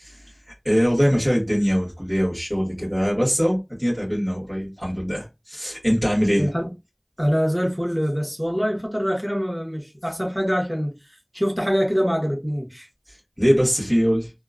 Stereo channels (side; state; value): both; identical; correlation 1.00